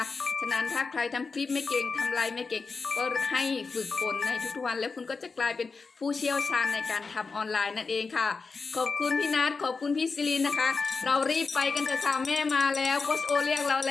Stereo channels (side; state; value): right; quieter; 4.5 dB